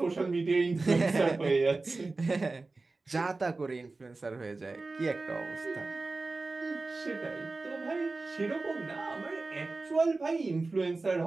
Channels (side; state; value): left; quieter; 3.5 dB